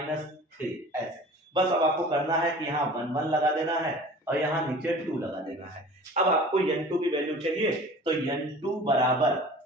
ऐसे बस अब आपको करना है कि यहाँ 1 1 लगा देना है और यहाँ नीचे 2 लगा देना है। अब आपको n2 की वैल्यू चाहिए, तो n2 बराबर,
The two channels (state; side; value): normal; both; correlation 0.43